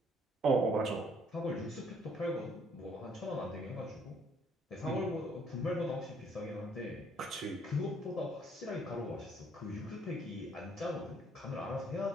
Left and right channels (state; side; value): normal; both; correlation 0.64